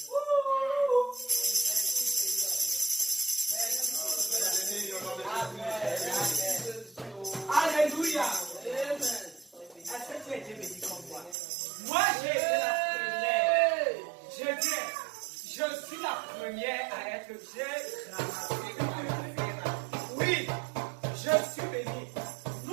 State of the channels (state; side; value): drops out; left; at 11.4 s